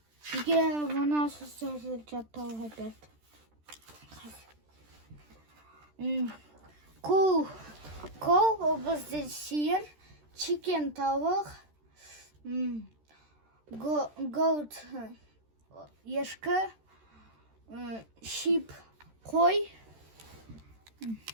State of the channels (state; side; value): late; left; 13 ms